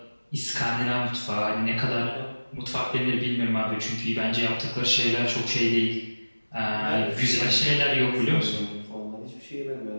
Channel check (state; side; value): inverted; both; correlation -1.00